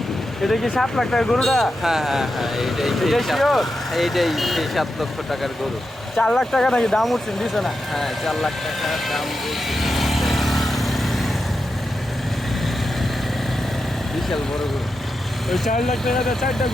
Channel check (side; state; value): both; normal; correlation 0.88